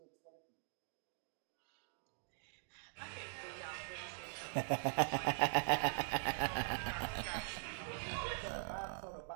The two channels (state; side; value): silent; left; digital silence